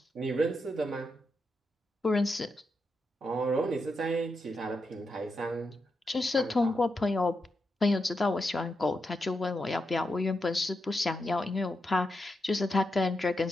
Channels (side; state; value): both; normal; correlation 0.85